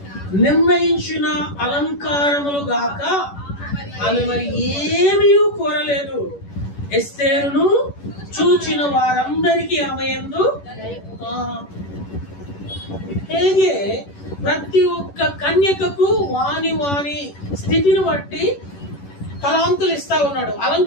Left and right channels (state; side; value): late; right; 11 ms